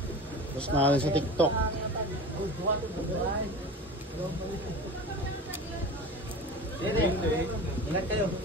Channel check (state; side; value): normal; both; correlation 0.33